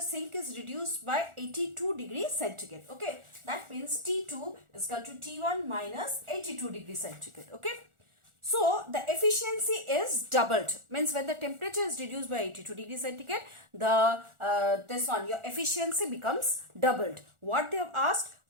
sink is reduced by 82 degrees centigrade. Okay, that means T2 is equal to T1 minus 82 degrees centigrade. Okay, so the efficiency is doubled. Means when the temperature is reduced by 82 degrees centigrade, your efficiency becomes doubled. What they have asked?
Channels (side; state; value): left; late; 1.4 ms